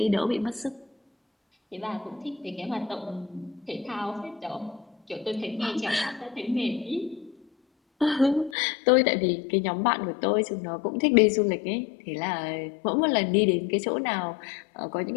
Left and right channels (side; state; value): right; drops out; at 8.6 s